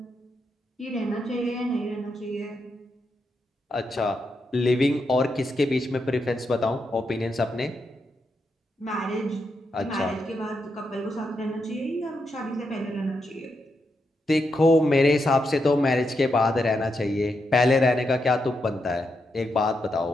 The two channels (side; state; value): both; normal; correlation 0.83